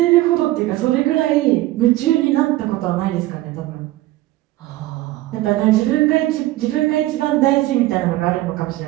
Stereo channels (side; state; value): left; quieter; 17.0 dB